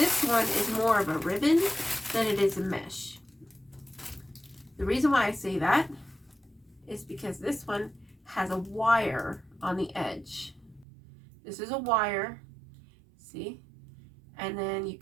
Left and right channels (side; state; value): left; drops out; at 10.9 s